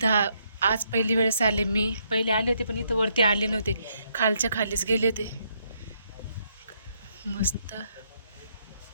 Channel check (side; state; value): both; inverted; correlation -0.74